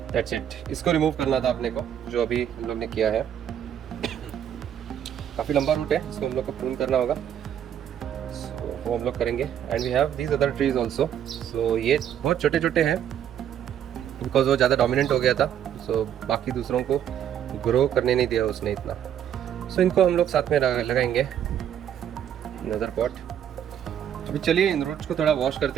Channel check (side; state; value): left; quieter; 9.7 dB